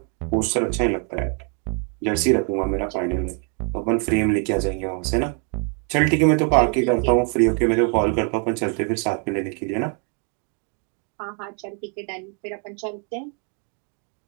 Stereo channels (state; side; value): quieter; left; 39.6 dB